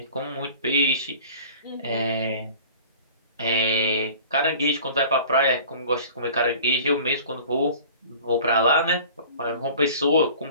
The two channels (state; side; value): inverted; both; correlation -0.45